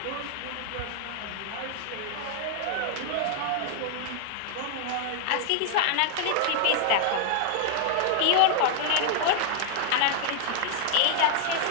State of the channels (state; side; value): different; both; correlation 0.00